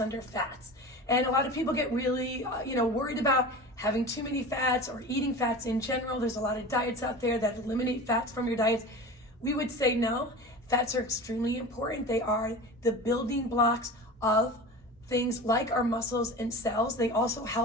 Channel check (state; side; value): normal; both; correlation 0.33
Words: under fats. And a lot of people get really worried about having too many fats or eating fats in general. There's a lot of diets out there that eliminate fats from your diets. We would say no. Fats are extremely important. They are the building blocks of things like our muscles and cells. They also